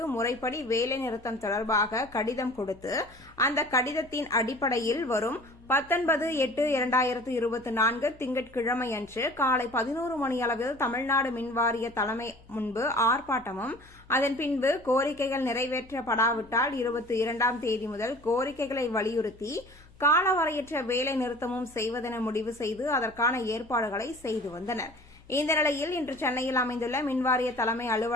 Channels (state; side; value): noise; left; hum, 25 dB below the sound